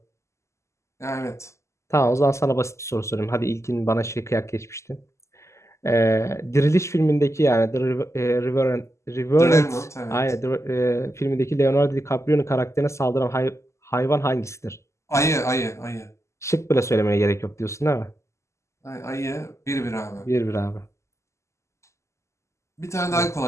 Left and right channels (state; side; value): late; right; 0.13 ms